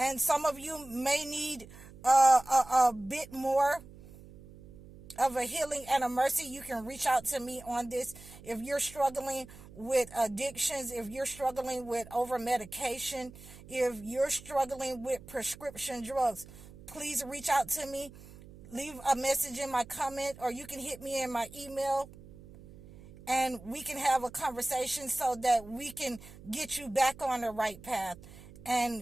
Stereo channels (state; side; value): noise; right; hum, 19 dB below the sound